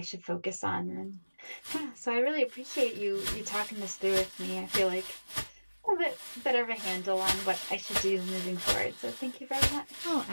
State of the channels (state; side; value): inverted; both; correlation -1.00